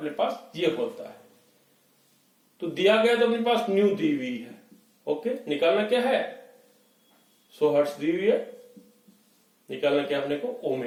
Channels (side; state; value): both; identical; correlation 1.00